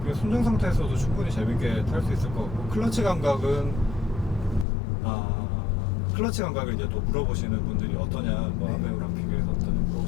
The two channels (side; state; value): right; drops out; at 4.7 s